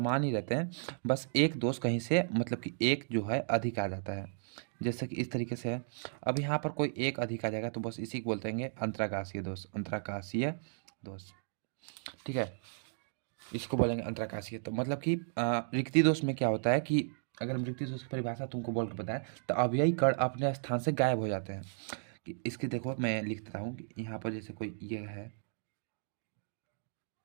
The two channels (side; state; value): left; silent; digital silence